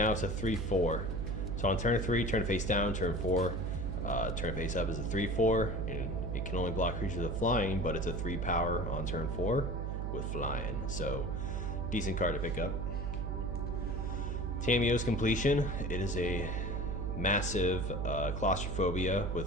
it's a 3/4. So on turn 3, turn face down, turn 4, turn face up is a 3/4, and it can only block creatures with flying, but it's a 3 power on turn 4 with flying. So decent card to pick up. Tamiyo's Completion, it is a massive claustrophobia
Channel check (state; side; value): noise; right; hum, 2 dB below the sound